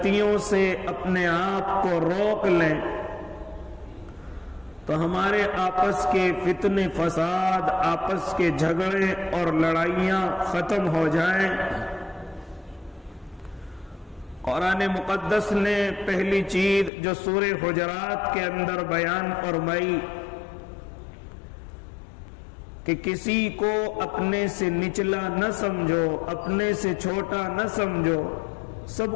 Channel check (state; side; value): drops out; right; at 16.9 s